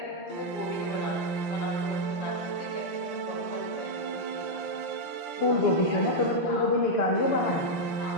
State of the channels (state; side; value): late; right; 5.8 ms